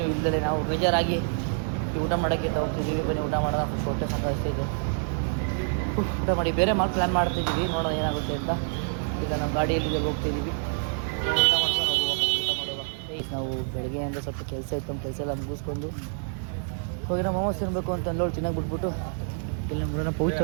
ಇಲ್ಲದೆ ನಾವು ಬೇಜಾರಾಗಿ ಊಟ ಮಾಡೋಕ್ಕೆ ಹೋಗ್ತಿದ್ದೀವಿ. ಬನ್ನಿ ಊಟ ಮಾಡೋಣ. ಹೊಟ್ಟೆ ಸಾಕಾಗ್ತಿದೆ. ಊಟ ಮಾಡಿ ಬೇರೆ ಪ್ಲ್ಯಾನ್ ಮಾಡ್ತಿದ್ದೀವಿ. ನೋಡೋಣ ಏನಾಗುತ್ತೆ ಅಂತ. ಈಗ ನಾವು ಗಾಡಿಯಲ್ಲಿ ಹೋಗ್ತಿದ್ದೀವಿ. ಊಟ ಮಾಡ್ಕೊಂಡು ಊಟ ಮಾಡುವ. ನಾವು ಬೆಳಗ್ಗೆಯಿಂದ ಸ್ವಲ್ಪ ಕೆಲಸ ಇತ್ತು. ನಮ್ಮ ಕೆಲಸ ಎಲ್ಲ ಮುಗಿಸ್ಕೊಂಡು ಹೋಗಿ ನಾವು ಮೋಮೋಸ್ ತಿನ್ನಬೇಕು ಅಂತ ಅಲ್ಲೋಳು ತಿನ್ನಕ್ಕೆ ಬಿಟ್ಬಿಟ್ಟು ಇಲ್ಲಿ ನೋಡೋಣ ಪೌಚ್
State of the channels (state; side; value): silent; left; digital silence